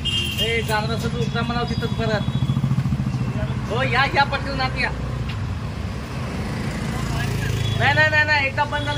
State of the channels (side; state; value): both; identical; correlation 1.00